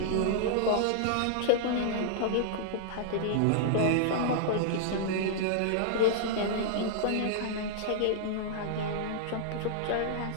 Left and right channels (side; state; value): both; different; correlation -0.01